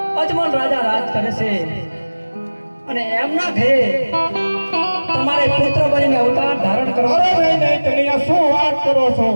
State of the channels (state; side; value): inverted; both; correlation -1.00